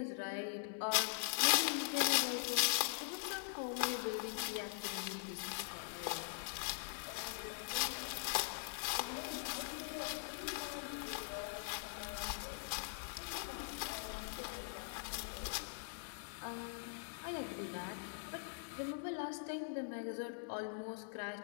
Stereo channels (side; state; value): right; silent; digital silence